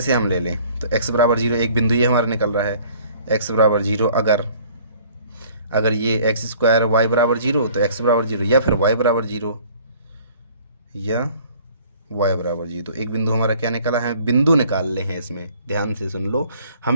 हम ले लें तो x बराबर जीरो, एक बिंदु ये हमारा निकल रहा है, x बराबर जीरो। अगर ये एक्स स्क्वायर वाई बराबर जीरो तो x बराबर जीरो, या फिर y बराबर जीरो, या y बराबर जीरो। तो एक बिंदु हमारा क्या निकला है, बिंदु निकाल ले हैं इसमें, ध्यान से सुन लो,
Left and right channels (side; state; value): both; inverted; correlation -0.53